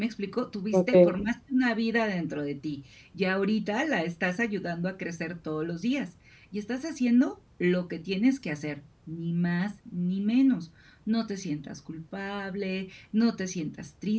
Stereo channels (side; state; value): both; identical; correlation 1.00